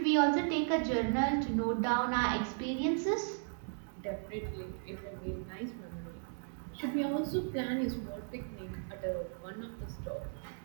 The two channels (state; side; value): silent; left; digital silence